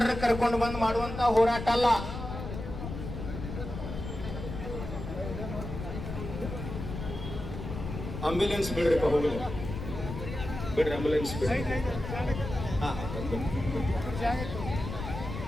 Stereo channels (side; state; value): left; noise; rumble, 7 dB below the sound